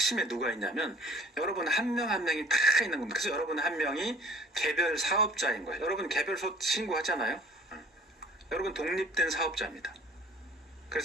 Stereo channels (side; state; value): both; normal; correlation 0.50